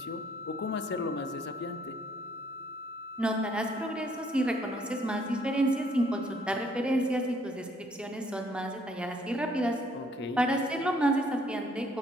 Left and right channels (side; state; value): both; normal; correlation 0.64